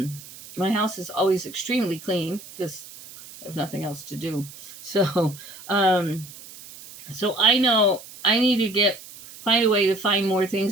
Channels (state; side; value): noise; right; hiss, 17 dB below the sound